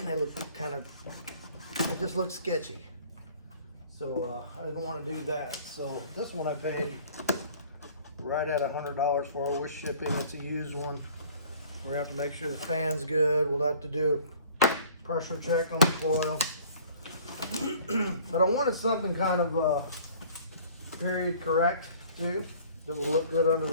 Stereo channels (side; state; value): both; inverted; correlation -0.51